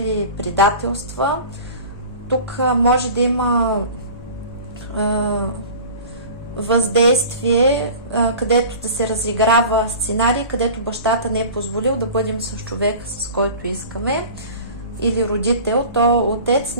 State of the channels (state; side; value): inverted; both; correlation -0.39